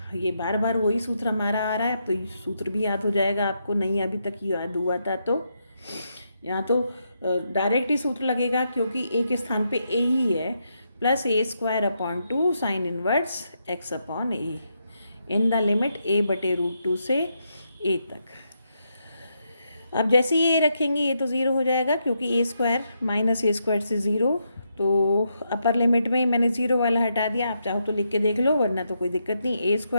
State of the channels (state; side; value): inverted; both; correlation -0.81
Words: ये बार बार वही सूत्र हमारा आ रहा है, तो ये सूत्र भी याद हो जाएगा आपको, नहीं अभी तक याद हुआ था तो यहाँ तो डायरेक्ट ही सूत्र लगेगा, क्योंकि ए के स्थान पे ए ही है, plus a square upon 2 sine inverse x upon a in the limit a बटे रूट टू से ए तक। अब जैसे ही ये रखेंगे ये तो 0 हो जाएगा, क्योंकि ए स्क्वायर माइनस ए स्क्वायर से 0। तो अपर लिमिट में मैंने 0 वाला हटा दिया, आप चाहो तो लिख के देख लो, वरना तो कोई दिक्कत नहीं। ए